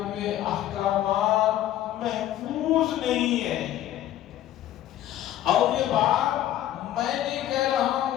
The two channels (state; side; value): quieter; right; 12.7 dB